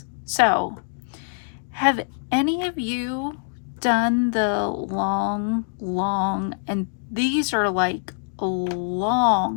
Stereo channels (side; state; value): right; silent; digital silence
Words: So, have any of you done the long, and these are like